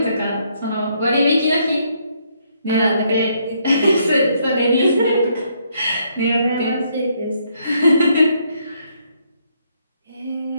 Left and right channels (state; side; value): inverted; both; correlation -0.72